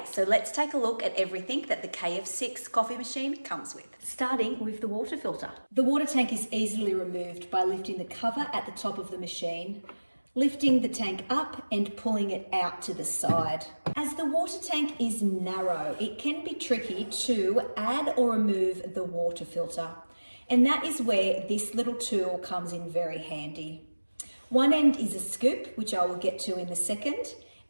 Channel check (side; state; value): both; inverted; correlation -1.00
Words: so let's take a look at everything that the KF6 coffee machine comes with. Starting with the water filter. The water tank is easily removed by lifting the cover at the top of the machine, lifting the tank up and pulling it out to the side. As the water tank is narrow, it can be tricky to add or remove the water filter. And that is where this little tool comes in very handy. One end is a scoop, which I will get to in a second,